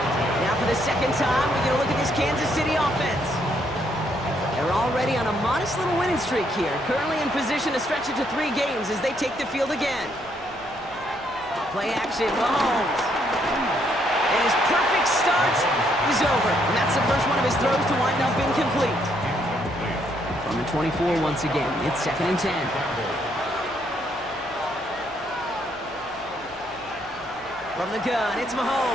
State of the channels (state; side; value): noise; right; hum, 24 dB below the sound